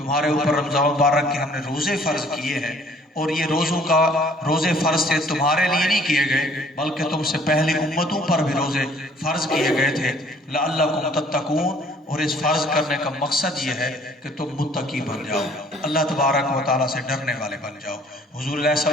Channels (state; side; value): normal; both; correlation 0.57